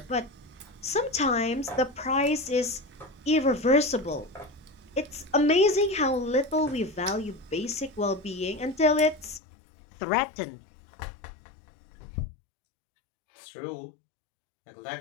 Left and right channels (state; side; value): drops out; right; at 9.4 s